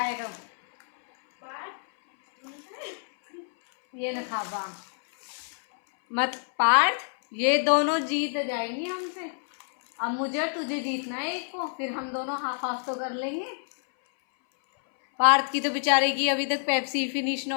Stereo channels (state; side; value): silent; right; 60 dB below the other